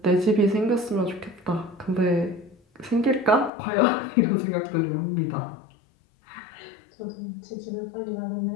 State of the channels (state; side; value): drops out; right; at 3.5 s